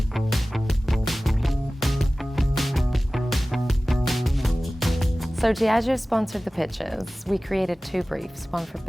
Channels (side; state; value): both; normal; correlation 0.97